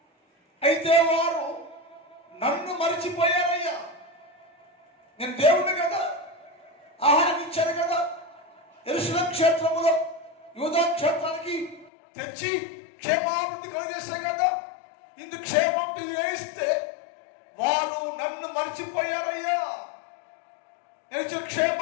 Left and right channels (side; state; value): right; drops out; at 11.9 s